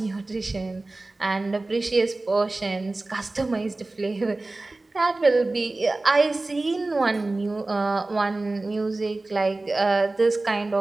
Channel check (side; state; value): left; quieter; 3.1 dB